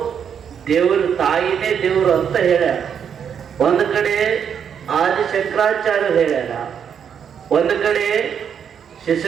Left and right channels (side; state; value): left; quieter; 7.8 dB